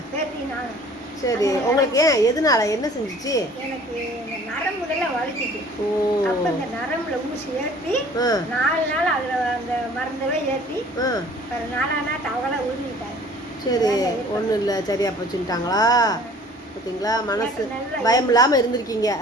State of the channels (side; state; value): both; normal; correlation 0.50